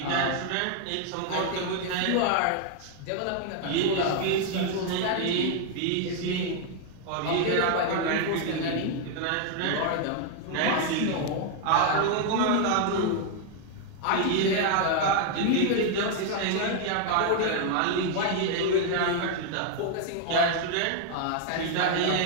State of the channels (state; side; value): different; both; correlation 0.00